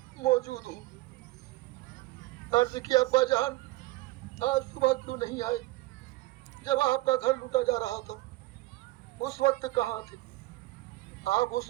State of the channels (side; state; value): left; quieter; 18.6 dB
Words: موجود ہوں. عرض کیا, ابا جان آج صبح کیوں نہیں آئے؟ جب آپ کا گھر لوٹا جا رہا تھا اس وقت کہاں تھے؟ آپ اس